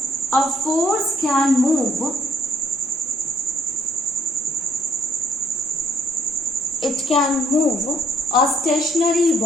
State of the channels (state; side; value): normal; both; correlation 0.67